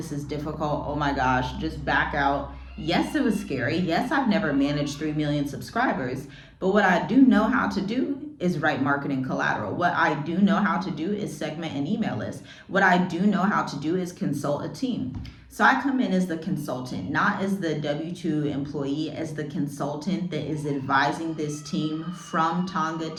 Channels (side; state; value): both; identical; correlation 1.00